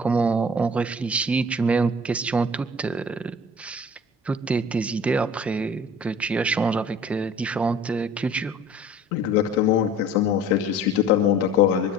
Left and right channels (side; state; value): both; normal; correlation 0.46